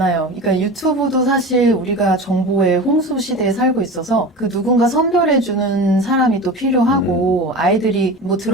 그러니까 유튜브도 사실 우리가 정보의 홍수 시대에 살고 있어서 그 누군가 선별해주는 사람이 또 필요하고 아이들이 뭐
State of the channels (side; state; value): both; normal; correlation 0.31